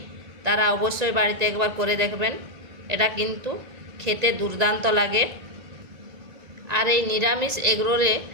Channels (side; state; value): left; late; 1.9 ms